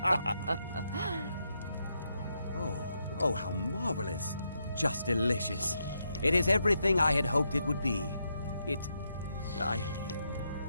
Oh, how marvelous. Just delicious. It is everything I had hoped it would be. I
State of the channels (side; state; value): both; inverted; correlation -0.81